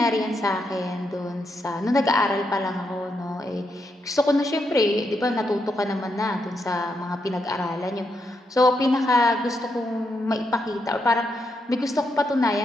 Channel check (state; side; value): normal; both; correlation 0.81